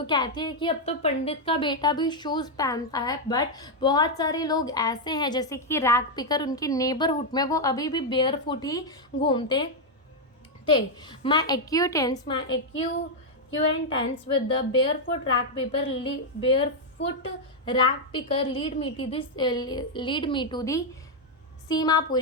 कहती है कि अब तो पंडित का बेटा भी शूज़ पहनता है, बट बहुत सारे लोग ऐसे हैं जैसे कि रैक पिकर उनकी नेबरहुड में वो अभी भी बेयर फुट ही घूमते थे। माई एक्यूटेंस with the barefoot rack picker lead me to the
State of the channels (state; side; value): normal; both; correlation 0.00